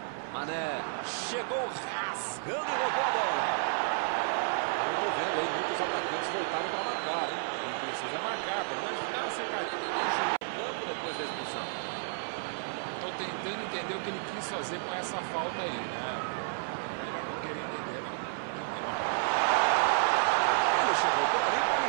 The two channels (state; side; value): silent; left; 57 dB below the other